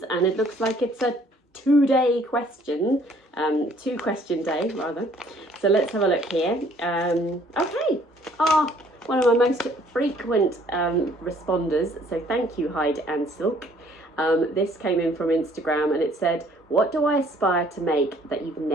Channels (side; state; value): both; normal; correlation 0.60